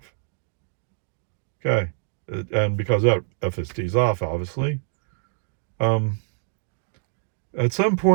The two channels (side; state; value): left; silent; digital silence